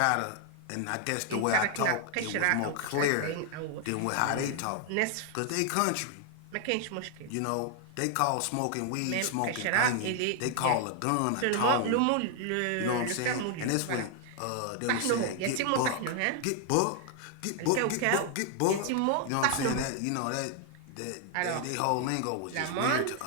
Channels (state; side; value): different; both; correlation 0.00